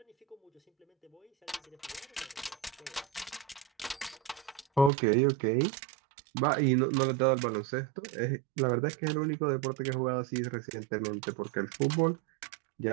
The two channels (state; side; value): drops out; left; at 4.9 s